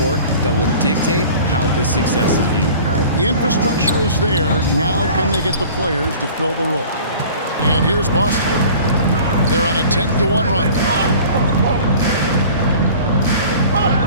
that will dictate how this success is viewed. The infrastructure is there. Now can they get the players to fill the role? And here's Boston. They're on a 10-1 run.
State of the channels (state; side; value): inverted; both; correlation -0.44